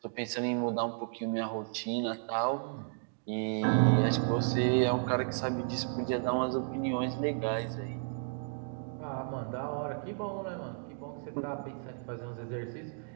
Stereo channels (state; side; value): silent; left; digital silence